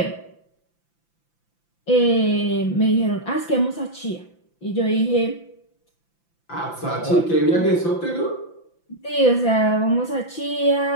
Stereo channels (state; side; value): late; right; 5.9 ms